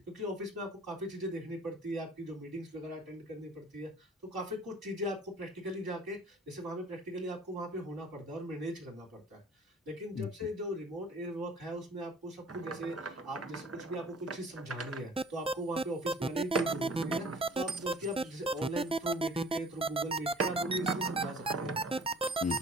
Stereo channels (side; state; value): both; normal; correlation 0.50